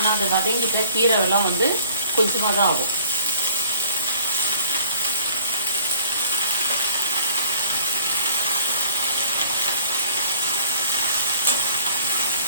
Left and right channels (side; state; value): both; inverted; correlation -0.51